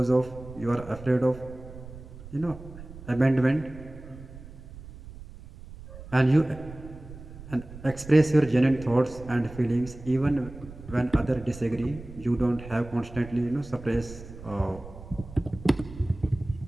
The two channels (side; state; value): right; noise; rumble, 15 dB below the sound